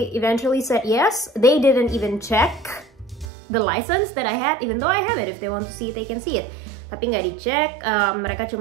eventually said yes. They didn't even check the license that I had, even though I have it. If they want to see it, they can see it. Tapi nggak dicek, mereka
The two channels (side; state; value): left; drops out; at 3.3 s